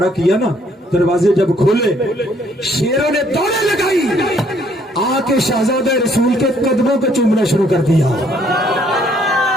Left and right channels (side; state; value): both; normal; correlation 0.65